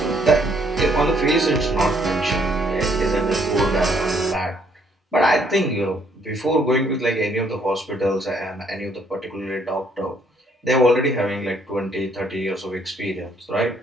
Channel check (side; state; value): both; normal; correlation 0.67